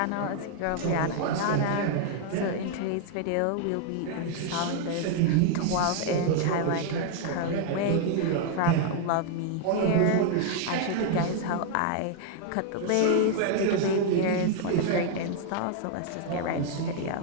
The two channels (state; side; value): different; both; correlation 0.00